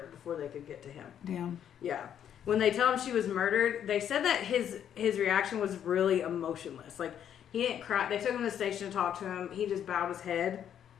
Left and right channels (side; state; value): right; quieter; 9.4 dB